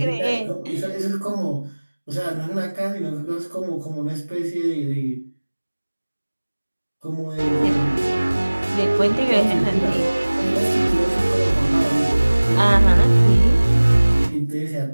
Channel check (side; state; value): both; inverted; correlation -1.00